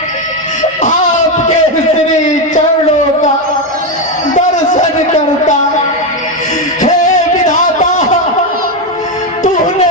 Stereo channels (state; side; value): normal; both; correlation 0.09